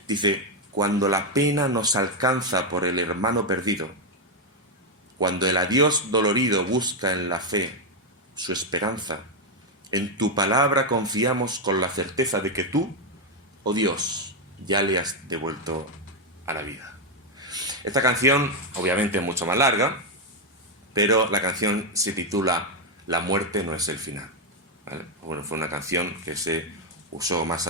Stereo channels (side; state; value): both; normal; correlation 0.03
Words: Dice: cuando la pena nos alcanza por el hermano perdido, cuando el adiós dolorido busca en la fe su esperanza, en tu palabra confiamos con la certeza de que tú, oh Dios, ya le has devuelto a la vida. Esta canción, obviamente, es mucho más larga, pero la canción se titula La muerte no es el final. ¿Vale? Bueno, fue una canción que se usó más